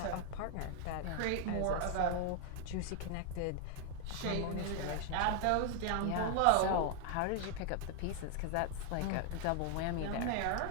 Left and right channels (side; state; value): both; different; correlation 0.00